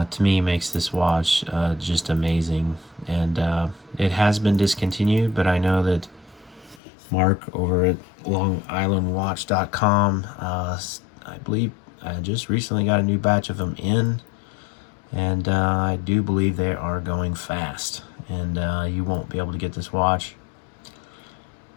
me, makes this watch just amazing. And it has been discontinued, but I know that Mark over at LongIslandWatch.com, I believe, just recently got a new batch of them in, and I do believe they are going fast, and you won't be able to get this watch.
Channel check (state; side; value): drops out; right; at 6.8 s